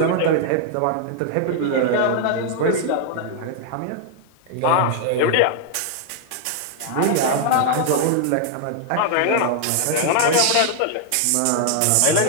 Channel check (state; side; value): different; both; correlation 0.00